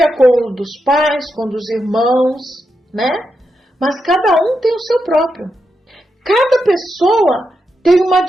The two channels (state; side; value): normal; both; correlation 0.85